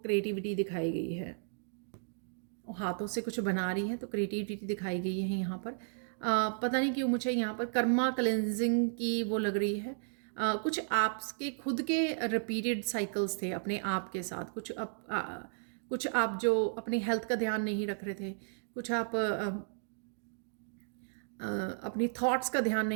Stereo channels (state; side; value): silent; left; digital silence